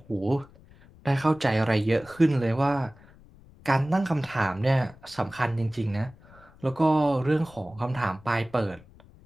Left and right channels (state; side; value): noise; left; rumble, 24 dB below the sound